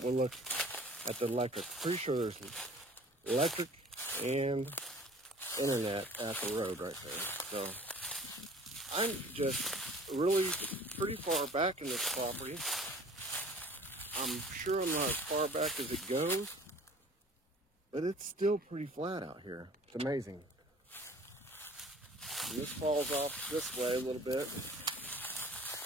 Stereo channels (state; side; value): normal; both; correlation 0.49